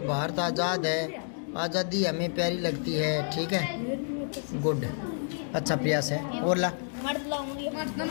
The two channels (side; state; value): right; silent; 58 dB below the other